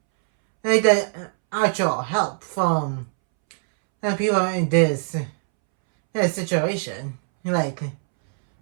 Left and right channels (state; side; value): silent; left; 64 dB below the other